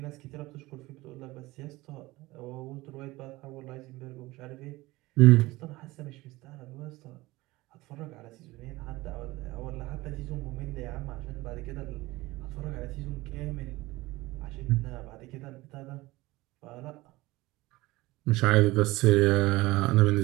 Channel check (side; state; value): left; quieter; 20.0 dB